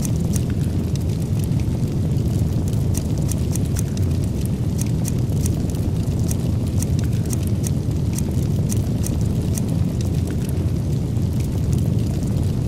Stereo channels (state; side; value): identical; both; correlation 1.00